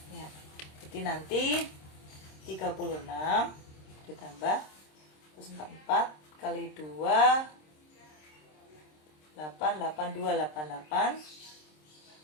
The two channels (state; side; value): late; right; 26 ms